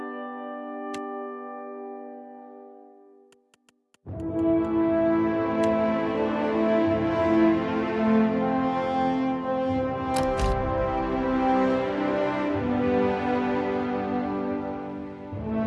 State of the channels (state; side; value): identical; both; correlation 1.00